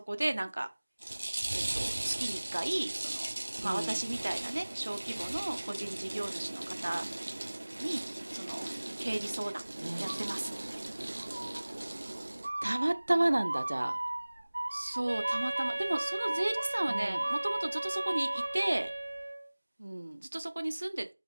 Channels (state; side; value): inverted; both; correlation -1.00